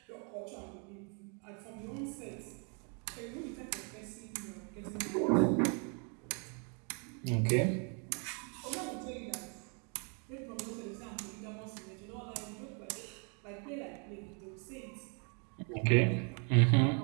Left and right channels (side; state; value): left; quieter; 37.6 dB